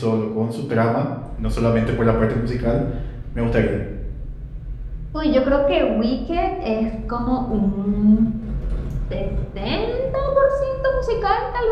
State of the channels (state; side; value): identical; both; correlation 1.00